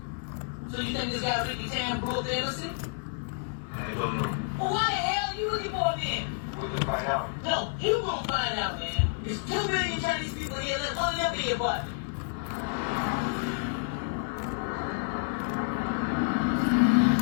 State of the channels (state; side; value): silent; right; digital silence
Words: So you think this guy Ricky Tan broke the innocent? I don't know. Well, why the hell are you looking for him then? We can find out. No, you won't find out, man. There's 2 million Chinese people here. Let one of them be your buddy.